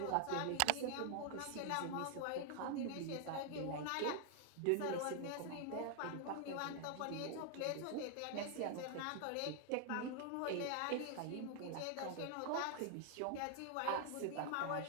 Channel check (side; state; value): both; different; correlation 0.00